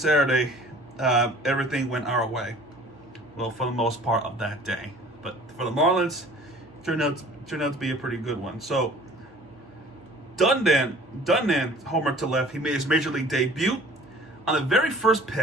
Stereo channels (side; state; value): both; normal; correlation 0.48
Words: everything went our way. Well, for the most part of that day. But for the Marlins, turned out to be a pretty good one. So, Dundan homer to left. He made his major league debut on the very first